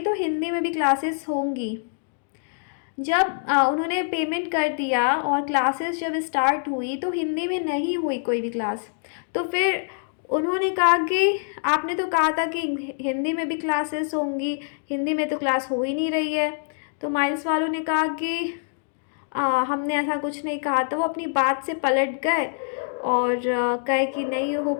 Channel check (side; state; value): right; silent; digital silence